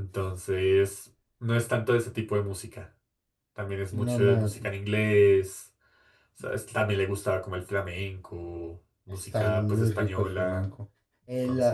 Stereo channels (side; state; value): both; identical; correlation 1.00